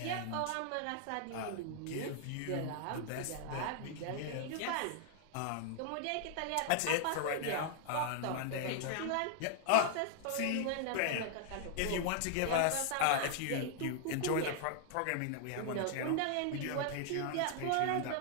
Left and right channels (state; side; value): different; both; correlation 0.00